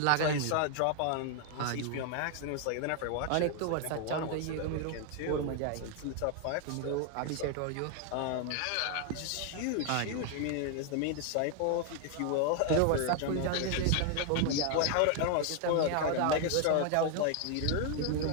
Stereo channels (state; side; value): different; both; correlation 0.00